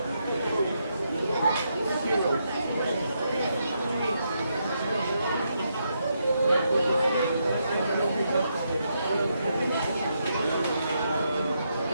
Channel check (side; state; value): both; inverted; correlation -0.80